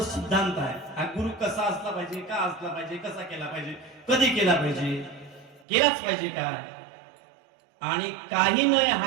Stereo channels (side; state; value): left; drops out; at 5.7 s